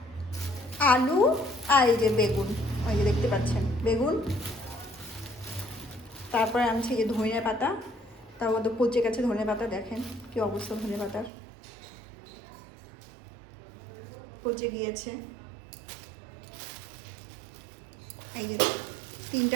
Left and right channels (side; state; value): left; drops out; at 11.3 s